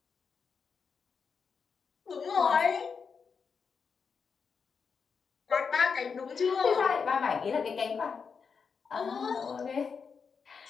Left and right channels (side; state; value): right; quieter; 5.8 dB